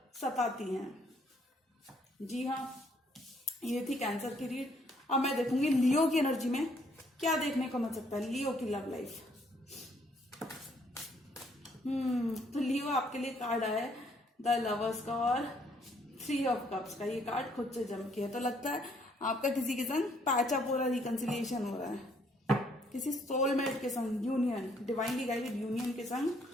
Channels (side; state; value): both; normal; correlation 0.67